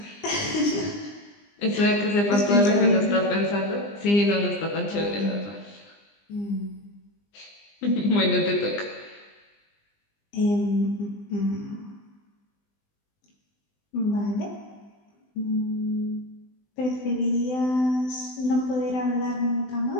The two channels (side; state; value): right; late; 20 ms